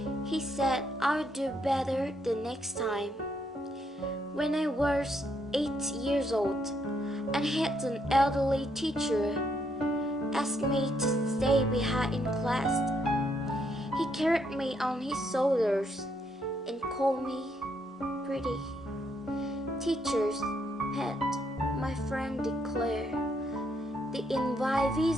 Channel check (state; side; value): normal; both; correlation 0.74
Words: He said I'll do better the next time. When I was 8 years old, I had an elderly teacher ask me to stay behind in class. He carried me on his shoulders and called me pretty. Teacher's pet, my friend declared. The